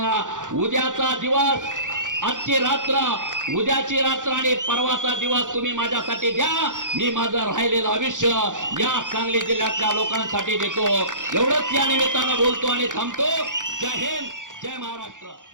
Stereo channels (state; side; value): late; left; 0.87 ms